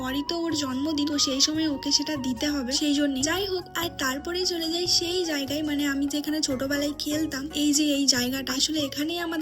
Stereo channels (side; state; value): both; identical; correlation 1.00